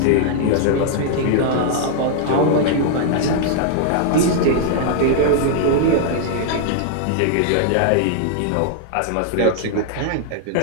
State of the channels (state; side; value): different; both; correlation -0.01